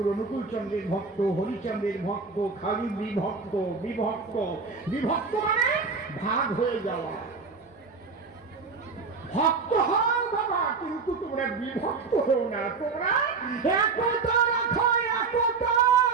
অনুকূল চন্দ্রের ভক্ত, হরিচন্দ্রের ভক্ত, খালি বিভক্ত। বিভক্ত বিভক্ত মানে ভাগ হয়ে যাওয়া। ভক্ত হও বাবা, কিন্তু তোমরা বিভক্ত হও না, তোমরা একতা রাখো, একতা।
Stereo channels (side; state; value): left; quieter; 4.7 dB